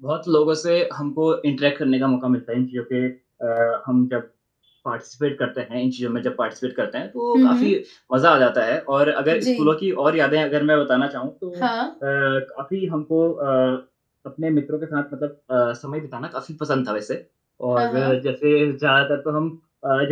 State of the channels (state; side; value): identical; both; correlation 1.00